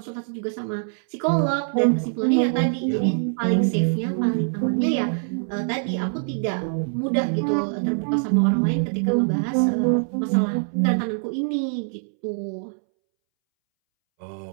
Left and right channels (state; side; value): silent; left; 63 dB below the other